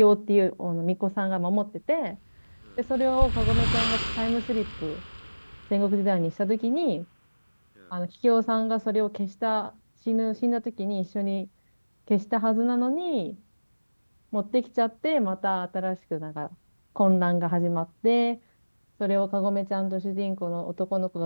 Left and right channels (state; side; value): inverted; both; correlation -1.00